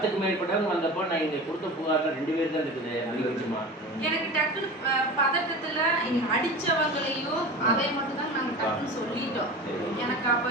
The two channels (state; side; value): normal; both; correlation 0.32